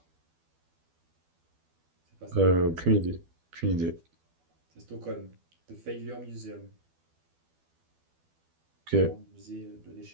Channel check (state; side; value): late; left; 12 ms